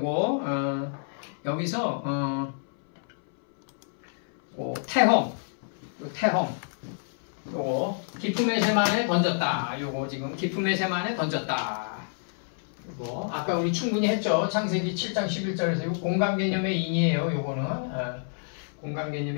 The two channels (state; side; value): silent; right; 59 dB below the other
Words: 여기서 태홍, 요거 기품의 세만에 던졌다. 요거 지금 기품의 세만에 던졌다. 이거 아까 우리 충분히 했죠. 창세기 7장 11절에서 이거 공간 개념의 인이에요. 요거는 공간